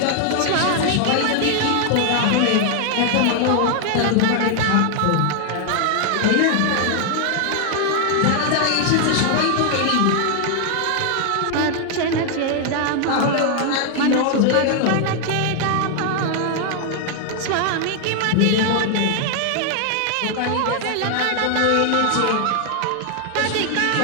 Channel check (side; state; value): both; different; correlation 0.00